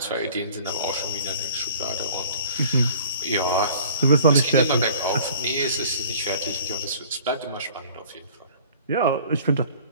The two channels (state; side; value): inverted; both; correlation -0.48